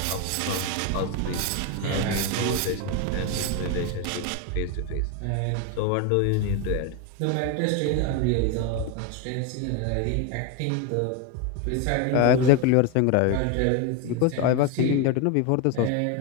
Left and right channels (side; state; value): both; different; correlation 0.02